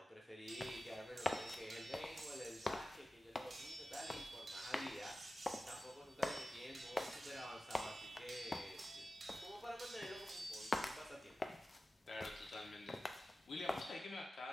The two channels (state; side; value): normal; both; correlation 0.95